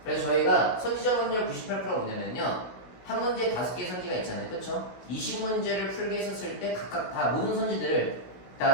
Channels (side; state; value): right; late; 16 ms